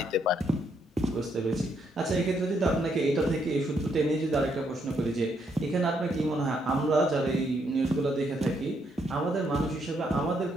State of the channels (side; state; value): both; normal; correlation 0.74